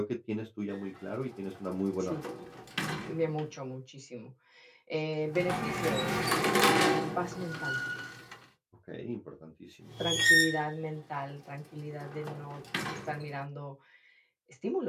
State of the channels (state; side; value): identical; both; correlation 1.00